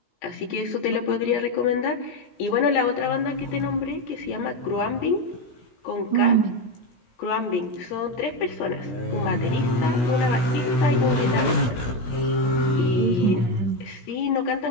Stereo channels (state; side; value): late; right; 16 ms